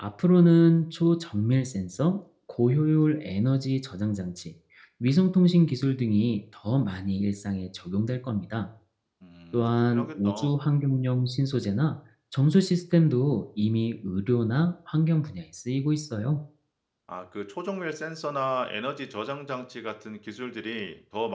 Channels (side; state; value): both; identical; correlation 1.00